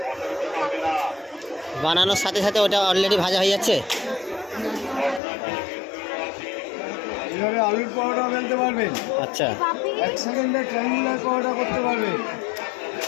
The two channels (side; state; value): right; drops out; at 5.2 s